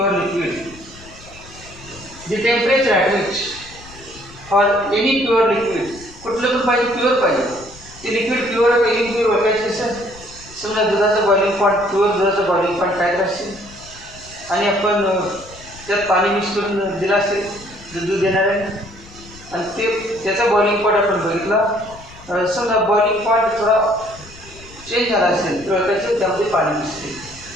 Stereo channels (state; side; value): noise; left; rumble, 20 dB below the sound